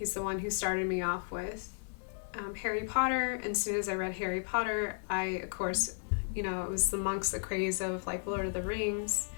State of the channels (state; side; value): silent; right; digital silence